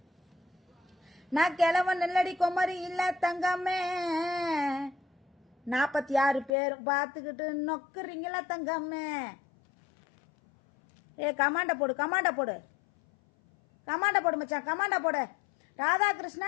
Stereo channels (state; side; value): drops out; right; at 6.5 s